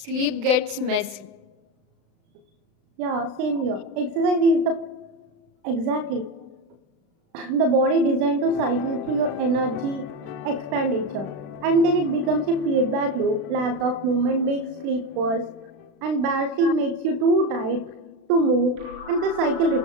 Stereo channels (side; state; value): left; late; 36 ms